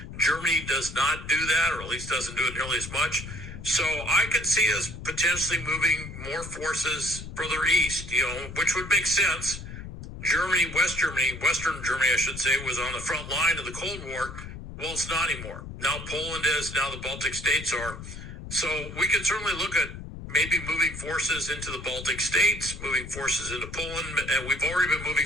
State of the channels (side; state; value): left; noise; rumble, 11 dB below the sound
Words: Germany does not do that, or at least doesn't do it nearly as much. So I could see us potentially moving more forces further east, which would make sense. Western Germany, I should say, was on the front line of the Cold War. Well, it's not anymore. Now Poland is, now the Baltic states are. So we could certainly look at maybe moving forces into the Baltic states, moving forces into Poland, and we've already been